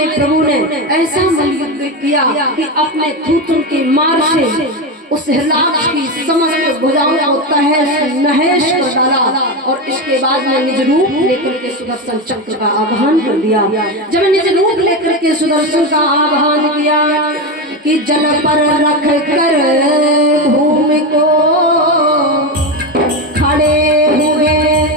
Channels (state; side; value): normal; both; correlation 0.15